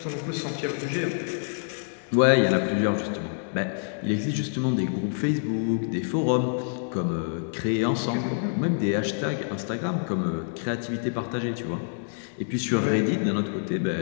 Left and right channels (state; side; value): silent; right; digital silence